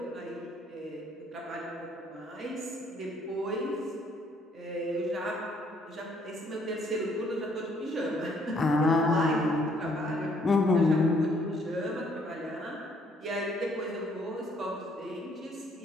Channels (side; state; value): both; normal; correlation 0.65